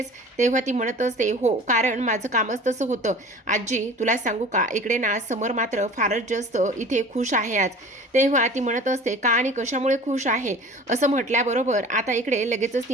तेव्हा ती म्हणत असते हो कारण माझं कामच तसं होतं. आजी तुला सांगू का, इकडे ना समर मात्र फारच जास्त इथे खुश आहे आज. तेव्हा ती म्हणत असते का आणि कशामुळे खुश आहे असं म्हटल्याबरोबर आता इकडे लगेचच ती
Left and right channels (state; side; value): normal; both; correlation 0.42